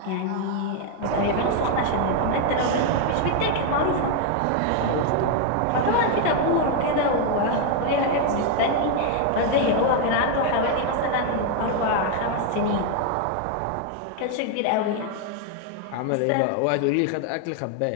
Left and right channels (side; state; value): both; different; correlation 0.01